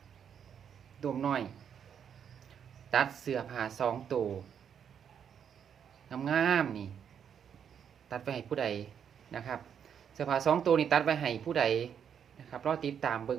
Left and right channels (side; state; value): left; quieter; 8.0 dB